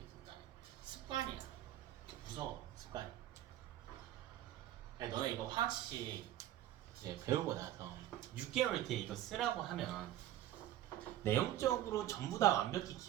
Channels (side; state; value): left; quieter; 12.9 dB